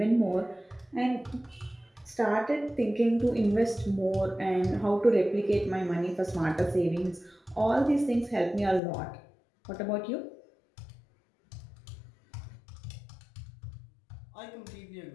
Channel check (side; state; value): right; drops out; at 8.8 s